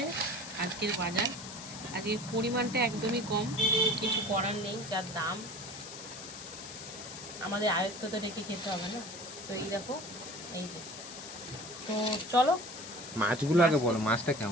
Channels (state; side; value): noise; left; hiss, 11 dB below the sound